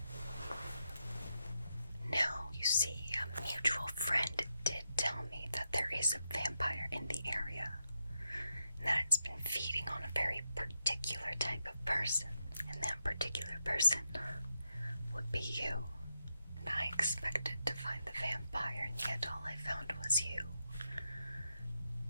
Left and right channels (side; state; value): both; inverted; correlation -0.84